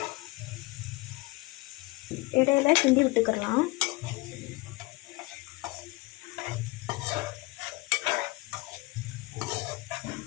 இடையில கிண்டி விட்டுக்கலாம்.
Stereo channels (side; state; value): right; quieter; 22.7 dB